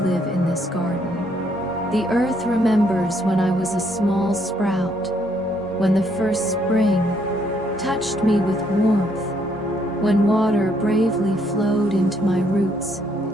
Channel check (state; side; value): normal; both; correlation 0.70